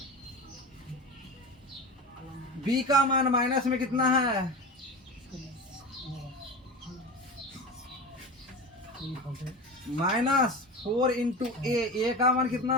b का मान माइनस में कितना है? -4 इंटू a का मान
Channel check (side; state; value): both; normal; correlation 0.28